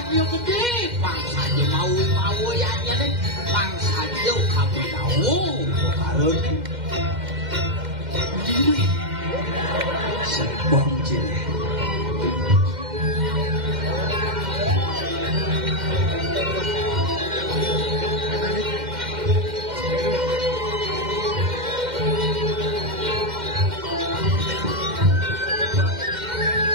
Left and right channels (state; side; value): late; left; 2.1 ms